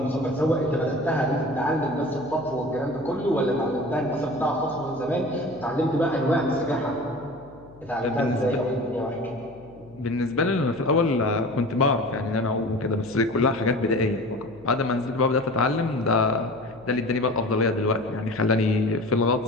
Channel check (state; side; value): noise; left; hum, 24 dB below the sound